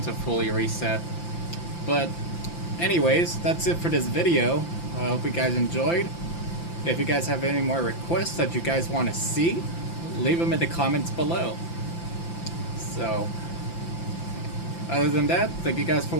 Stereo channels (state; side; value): late; right; 5.8 ms